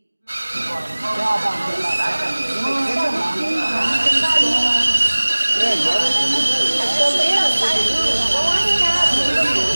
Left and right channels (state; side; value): inverted; both; correlation -1.00